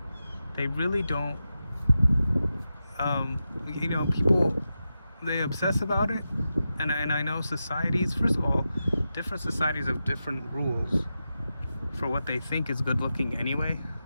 they really don't, people, they obsess about it. And I know societies, first of all, different societies have different rules for what they think is good looking anyway.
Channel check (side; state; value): both; inverted; correlation -0.90